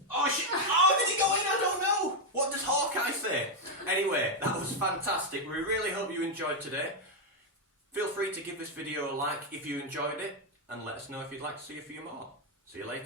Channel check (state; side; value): normal; both; correlation 0.02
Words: Oh, did it go in? I don't know. What does Hawkeye say? Anyway, that was fantastic. We really hope you enjoyed today. Feel free to give this video a like if you enjoyed it, and let us know if you'd like to see a few more. See you